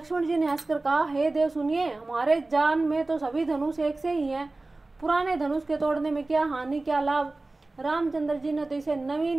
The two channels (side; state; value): left; quieter; 3.1 dB